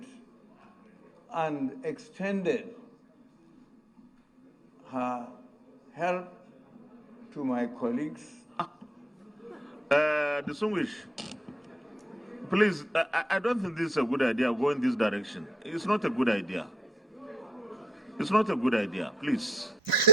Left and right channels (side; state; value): both; normal; correlation 0.72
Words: and extended her help to my colleagues. Distinguished, please, I don't think this is a good idea, go in this direction. It's not a good idea. It's not a good idea, please.